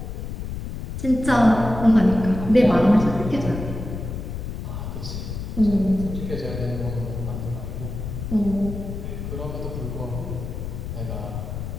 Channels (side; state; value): left; noise; rumble, 6 dB below the sound